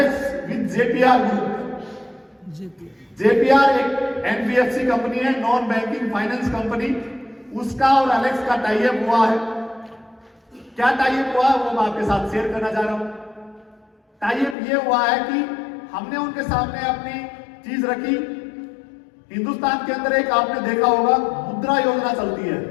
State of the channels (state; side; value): drops out; right; at 14.6 s